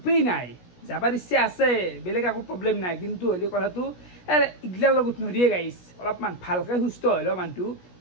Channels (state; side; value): late; right; 17 ms